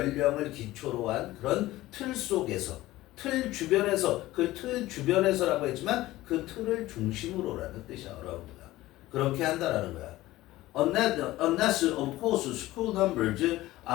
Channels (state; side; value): quieter; right; 17.0 dB